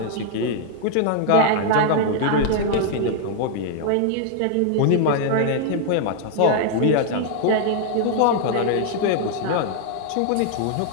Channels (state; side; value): different; both; correlation 0.00